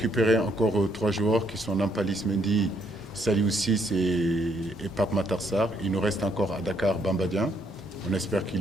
encore 3 joueurs qui sont Nampalys Mendy, Saliou Ciss et Pape Matar Sarr. Il nous reste encore à Dakar Bamba Dieng. On espère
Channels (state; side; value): normal; both; correlation 0.71